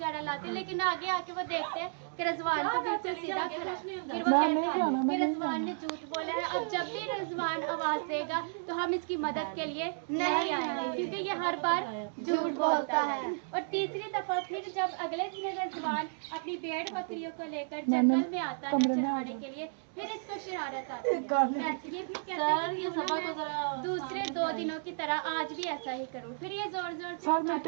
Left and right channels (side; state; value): left; silent; digital silence